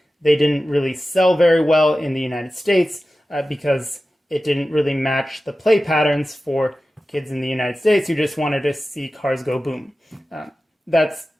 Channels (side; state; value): both; normal; correlation 0.95